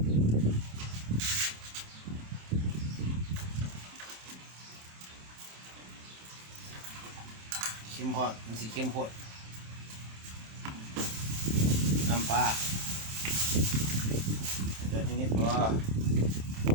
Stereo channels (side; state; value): left; late; 27 ms